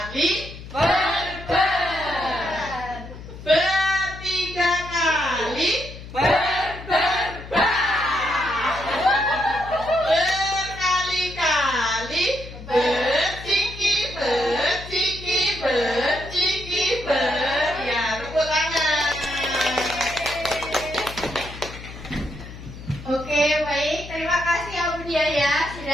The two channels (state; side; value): noise; left; hum, 13 dB below the sound